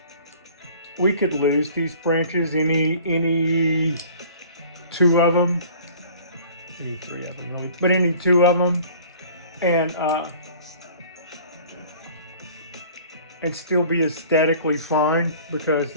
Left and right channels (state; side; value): inverted; both; correlation -0.48